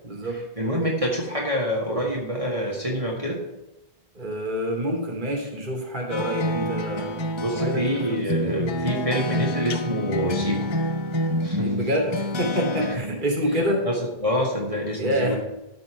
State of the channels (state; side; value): late; left; 1.6 ms